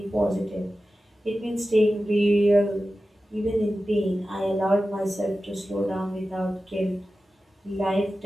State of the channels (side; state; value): both; normal; correlation 0.94